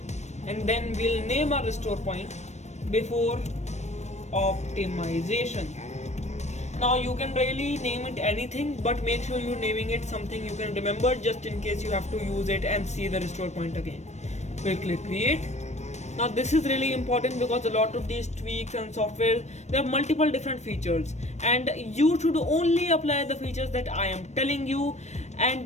and then we'll name our restore point before optimization. Now you can really name it anything, but make sure you're naming it something you can remember, just in case you have to use it and see the restore point again. We'll click create. Now this is really important because a lot of these tweaks and software, there are multiple different features, and you should only apply the features that I am telling you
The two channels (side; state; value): right; late; 0.33 ms